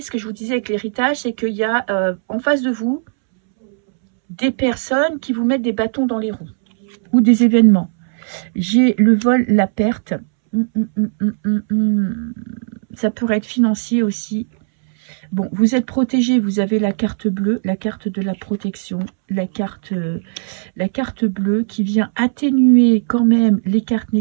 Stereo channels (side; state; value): left; silent; 68 dB below the other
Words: ce que je vous disais avec l'héritage, c'est qu'il y a en face de vous, des personnes qui vous mettent des bâtons dans les roues ou des événements. J'ai le vol, la perte. Ça pourrait être financier aussi. Bon, vous êtes protégé, vous avez la carte bleue, la carte de la protection, la carte bleue qui vient atténuer quand même les cartes